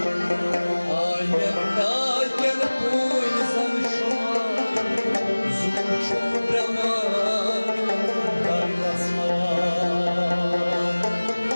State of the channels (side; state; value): both; inverted; correlation -1.00